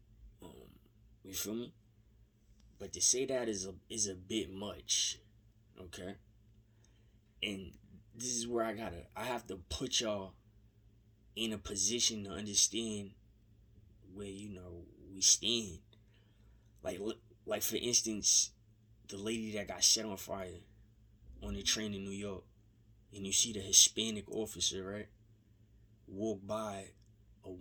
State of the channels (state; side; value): identical; both; correlation 1.00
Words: You feel me? But to say that is a bit much, okay? And this is where I have to put y'all in a position to understand where, we stand. Like for instance, the lady that got set on fire on the train in New York, and you see the Hispanic officer, right, walk by a